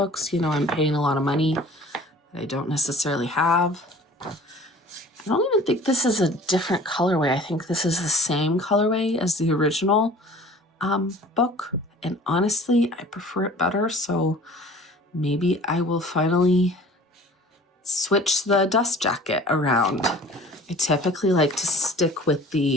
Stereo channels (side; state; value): both; normal; correlation 0.47